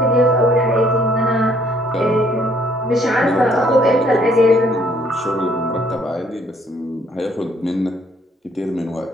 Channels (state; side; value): normal; both; correlation 0.64